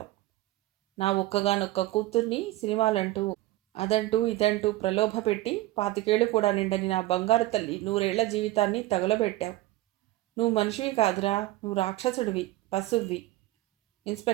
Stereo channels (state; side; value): quieter; left; 16.9 dB